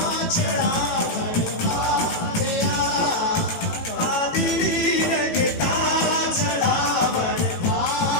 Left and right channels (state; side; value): late; right; 18 ms